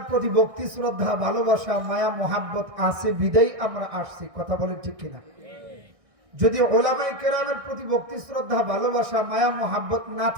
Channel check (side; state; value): left; late; 1.6 ms